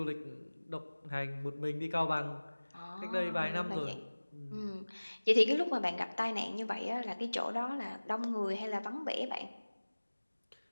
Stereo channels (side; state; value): both; inverted; correlation -1.00